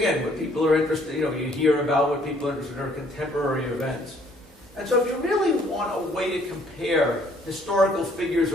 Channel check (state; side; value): normal; both; correlation 0.63